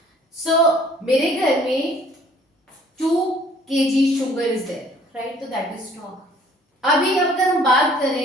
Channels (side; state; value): both; normal; correlation 0.56